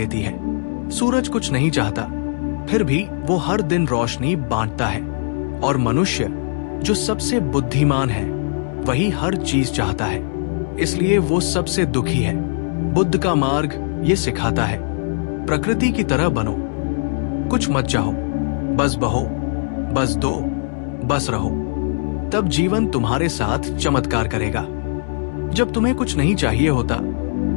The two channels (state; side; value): silent; right; digital silence